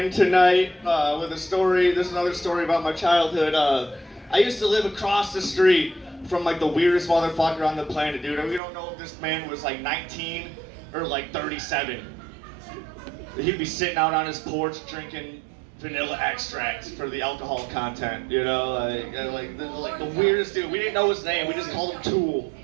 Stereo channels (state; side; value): drops out; left; at 8.6 s